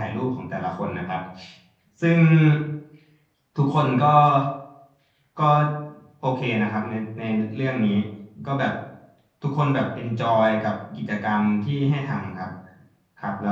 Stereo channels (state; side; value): identical; both; correlation 1.00